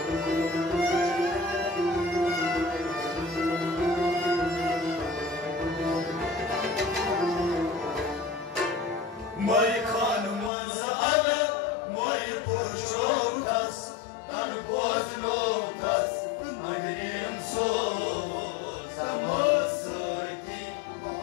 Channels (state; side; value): drops out; right; at 10.5 s